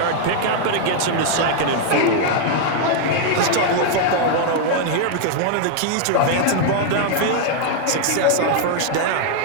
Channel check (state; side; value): different; both; correlation 0.00